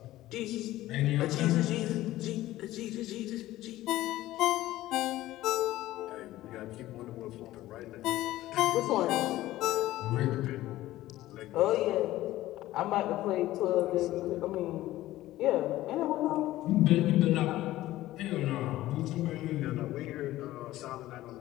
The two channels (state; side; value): quieter; right; 15.7 dB